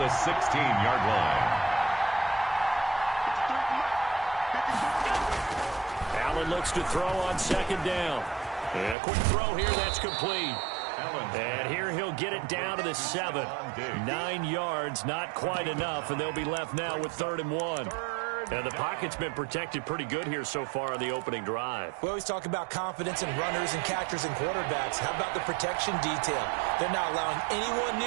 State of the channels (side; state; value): left; drops out; at 9.0 s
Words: 16-yard line. Allen looks to throw on 2nd down. And a quick throw here, that's complete. And here he'll get it down to the 7. 9 yards, not quite enough, and they'll be left now with 3rd and 1. And the pocket's been protected pretty good here so far on the opening drive. We always talk about confidence in runners and catchers and quarterbacks. How about the protection detail? They're not allowing anyone